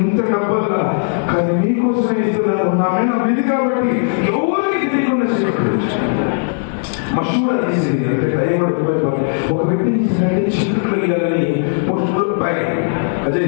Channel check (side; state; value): right; silent; 64 dB below the other